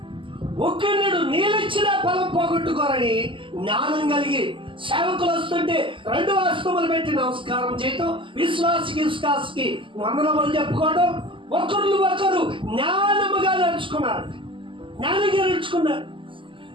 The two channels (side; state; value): left; late; 0.25 ms